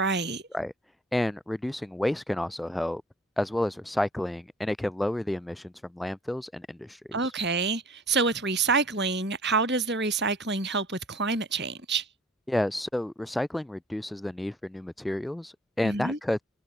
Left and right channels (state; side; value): normal; both; correlation 0.54